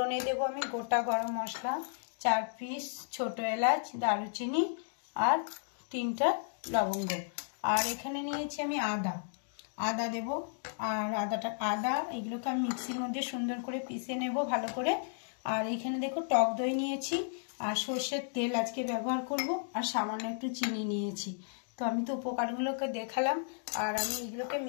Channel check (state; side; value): silent; right; digital silence